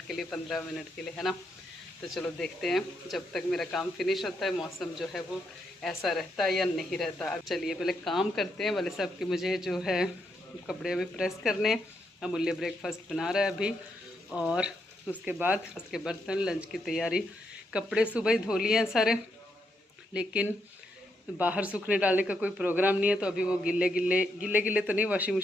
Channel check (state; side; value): normal; both; correlation 0.79